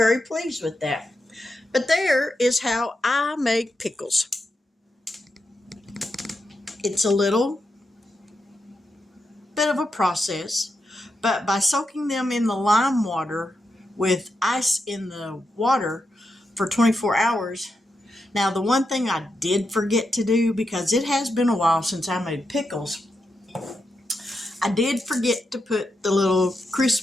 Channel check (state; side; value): normal; both; correlation 0.86